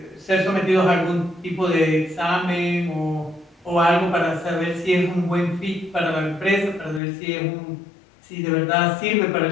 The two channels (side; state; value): right; drops out; at 7.0 s